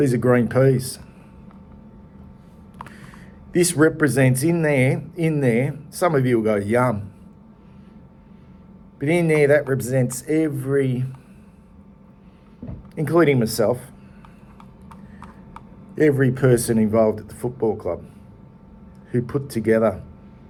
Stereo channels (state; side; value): identical; both; correlation 1.00